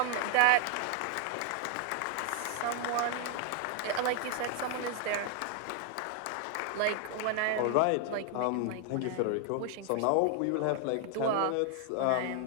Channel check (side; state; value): both; different; correlation 0.00